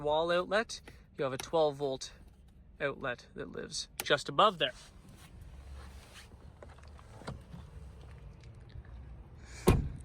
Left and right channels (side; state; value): both; identical; correlation 1.00